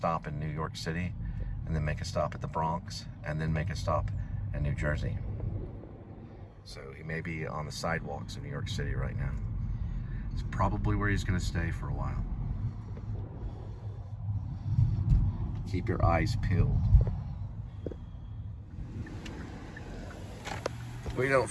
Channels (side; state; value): both; identical; correlation 1.00